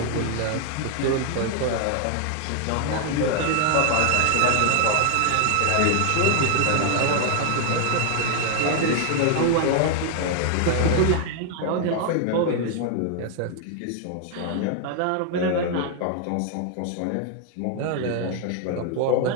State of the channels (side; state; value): both; different; correlation 0.01